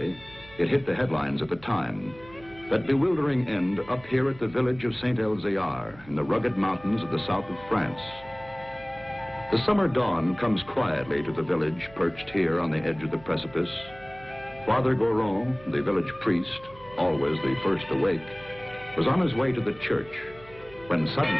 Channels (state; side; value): noise; right; hum, 21 dB below the sound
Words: It hit the headlines at the time. That bewildering end up here at the village of Saint-Elzéar in the rugged mountains of the south of France. The summer dawn comes quietly to the village perched here on the edge of the precipice. Father Goron, the village priest, always the first awake, was on his way to the church when